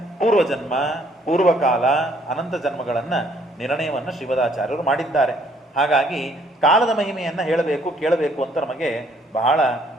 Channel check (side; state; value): both; normal; correlation 0.64